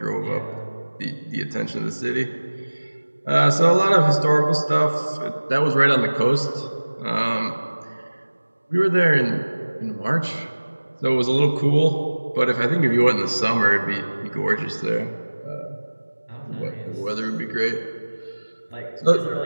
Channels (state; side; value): inverted; both; correlation -1.00